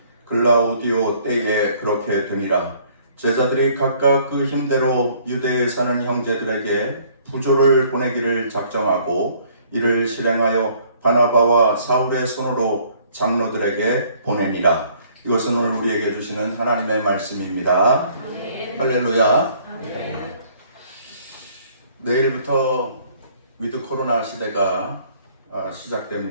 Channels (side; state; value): both; inverted; correlation -0.60